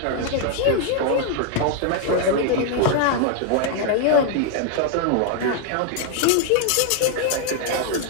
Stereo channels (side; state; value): both; different; correlation 0.00